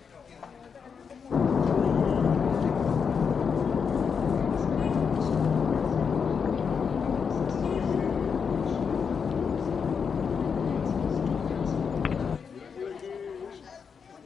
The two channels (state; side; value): quieter; right; 6.3 dB